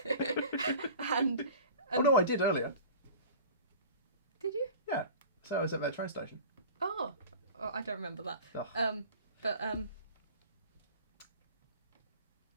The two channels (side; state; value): both; inverted; correlation -0.40